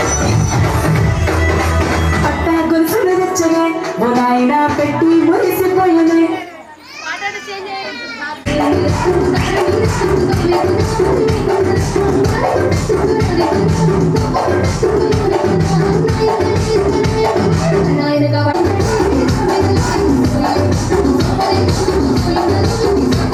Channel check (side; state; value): both; identical; correlation 1.00